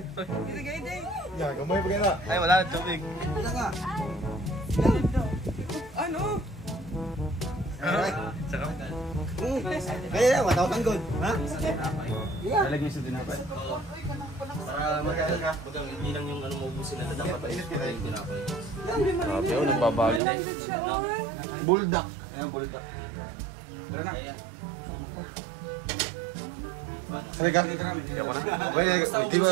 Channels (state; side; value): drops out; left; at 20.2 s